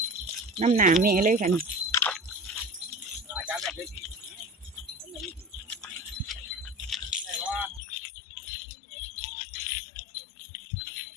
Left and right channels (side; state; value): right; drops out; at 7.8 s